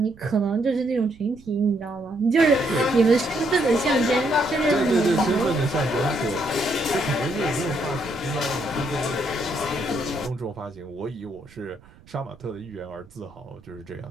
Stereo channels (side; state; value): right; noise; rumble, 25 dB below the sound